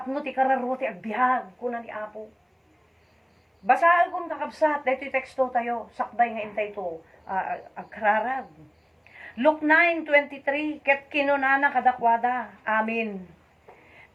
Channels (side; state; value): both; identical; correlation 1.00